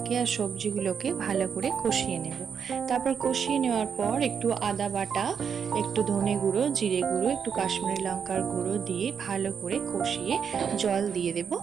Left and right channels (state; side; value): quieter; left; 7.0 dB